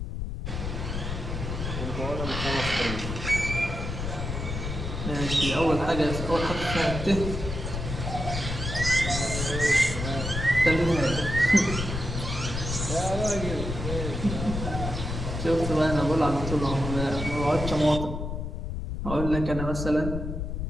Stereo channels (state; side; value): noise; left; rumble, 4 dB below the sound